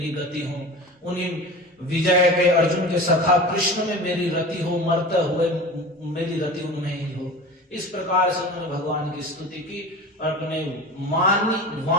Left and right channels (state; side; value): normal; both; correlation 0.33